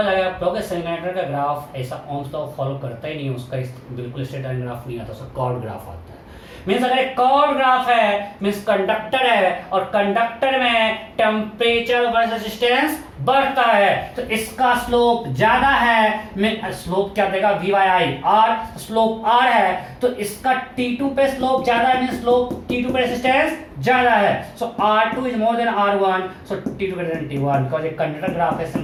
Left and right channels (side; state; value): both; identical; correlation 1.00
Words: अगर आप कहोगे सेमीकंडक्टर का ग्राफ ऐसा ओम्स लॉ फॉलो करता ही नहीं, उसका बिल्कुल स्ट्रेट लाइन ग्राफ नहीं आता, उसका कॉर्ड ग्राफ आता है। मीन्स अगर एक कॉर्ड ग्राफ है, मीन्स कंडक्टर है, और कंडक्टर में टेम्परेचर वर्सेस रेजिस्टेंस बढ़ता है, तो इसका स्लोप ज्यादा है। स्लोप क्या देगा? V by I, R slope R है, तो इसका T2 पे स्लोप ज्यादा है, मीन्स स्लोप T2 पे रेजिस्टेंस ज्यादा है। सो R2 is more than R1, so T2 greater than T1, because एक कंडक्टर ग्राफ है,